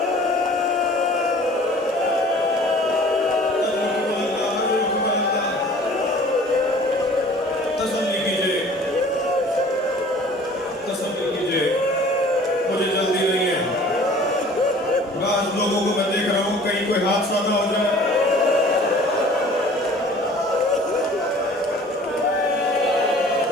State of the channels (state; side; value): normal; both; correlation 0.48